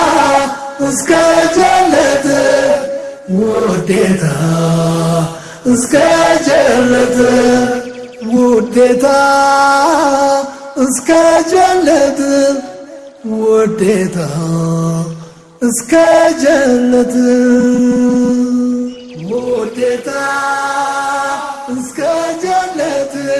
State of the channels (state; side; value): identical; both; correlation 1.00